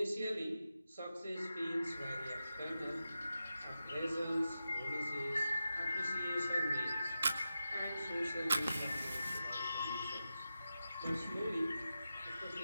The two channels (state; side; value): inverted; both; correlation -0.91